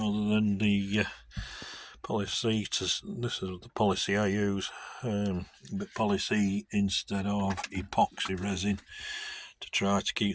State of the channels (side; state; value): both; identical; correlation 1.00